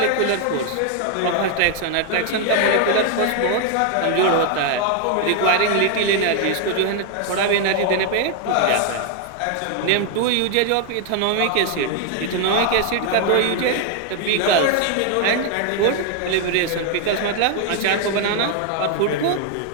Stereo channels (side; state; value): both; different; correlation 0.01